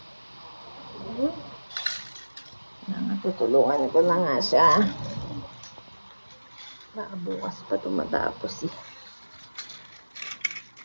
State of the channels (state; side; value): inverted; both; correlation -1.00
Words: Tutulungan ko na nga siya. Bukas pa tumatapos eh.